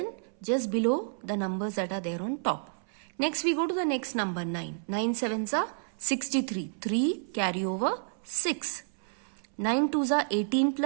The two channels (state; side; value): silent; left; 58 dB below the other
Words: just below the numbers that are there on top. Next we go to the next number 9. 9 sevens are 63. 3 carry over 6. 9 twos are 18